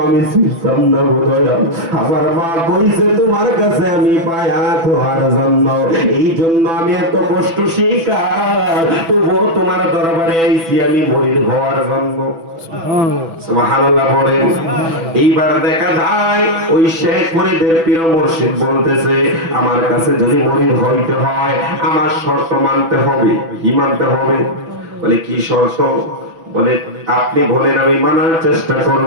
আমি চিনতাম না গো দয়াল, আমার মা কইছে তোমার কাছে আমি পায়া তোমার জন্য, এই জন্য আমি এত কষ্ট শিকার, তবুও তোমার দরবারে আইছি আমি মুরিদ হওয়ার জন্য। সুবহানাল্লাহ বলেন। এইবার দেখা যায় ওই শেখ ফরিদের পীর মুর্শিদ বলতেছে, আমার কাছে যদি মুরিদ হইতে হয় আমার শর্ত মানতে হবে। কি মানতে হবে? বলে কি শর্ত? বলে আপনি বলেন আমি মানার চেষ্টা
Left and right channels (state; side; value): late; left; 6.0 ms